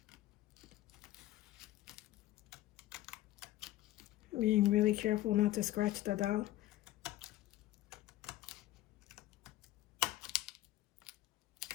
Being really careful not to scratch the dowel.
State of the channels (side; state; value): right; quieter; 15.5 dB